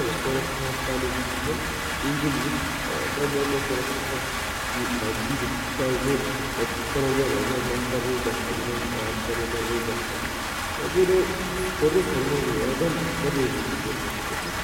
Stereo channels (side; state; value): both; identical; correlation 1.00